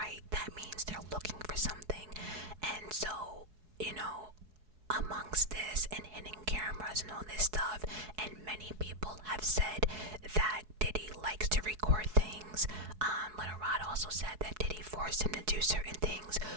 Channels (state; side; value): late; left; 4.7 ms